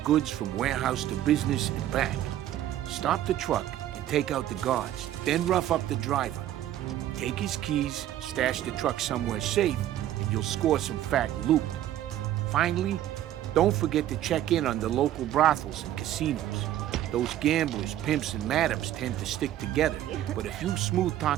goods from warehouse to business and back. Stop the truck and take out the guards, then rough up the driver. Take his keys, stash the truck somewhere safe, and you'll score some fat loot. Finally, don't forget to check in on the local brothels and casinos. Those gamblers, pimps, and madams tend to stick together, but if you smooth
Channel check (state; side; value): quieter; left; 12.4 dB